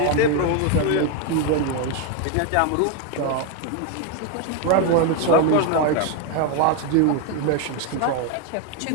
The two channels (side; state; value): both; different; correlation 0.01